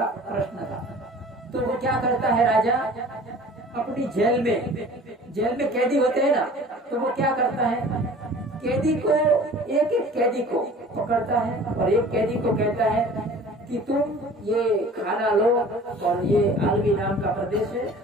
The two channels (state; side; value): normal; both; correlation 0.45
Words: प्रश्न था। तो वो क्या करता है राजा, अपनी जेल में कैदी होते हैं ना, तो वो क्या करता है, कैदी को एक कैदी को पकड़ता है और एक कैदी को कहता है कि तुम ये खाना लो और ये आलवी नाम का प्रदेश है,